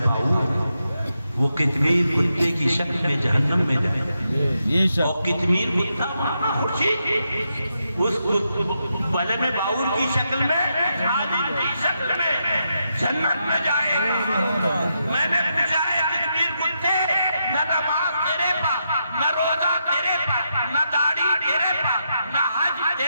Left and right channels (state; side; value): inverted; both; correlation -0.83